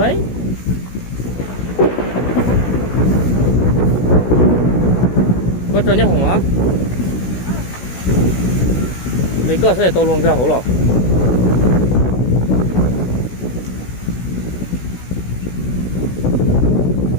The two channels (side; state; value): right; late; 16 ms